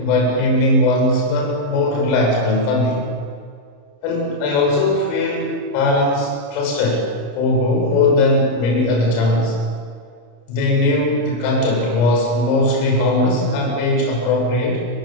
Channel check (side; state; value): right; late; 34 ms